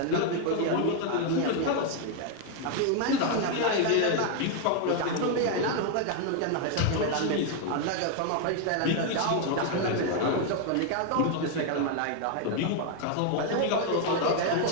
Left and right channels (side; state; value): both; different; correlation 0.00